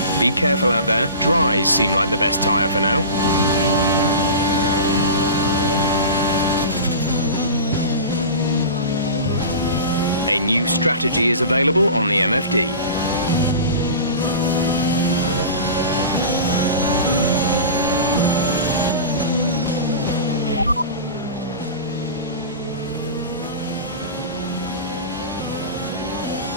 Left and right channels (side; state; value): both; inverted; correlation -0.32